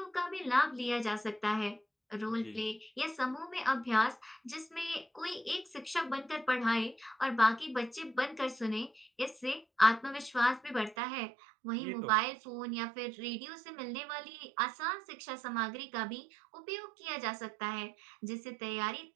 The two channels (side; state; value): left; drops out; at 11.0 s